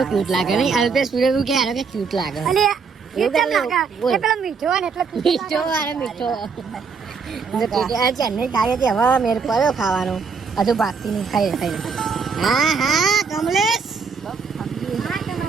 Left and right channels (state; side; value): quieter; left; 5.4 dB